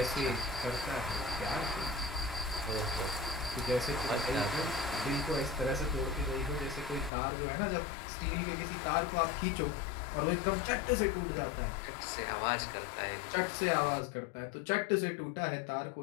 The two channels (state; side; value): drops out; right; at 7.1 s